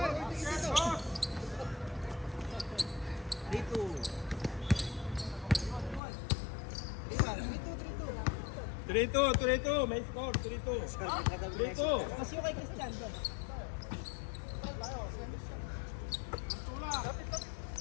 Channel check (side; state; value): right; drops out; at 6.0 s